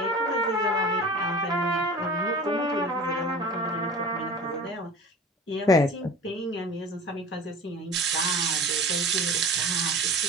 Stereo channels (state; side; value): normal; both; correlation 0.38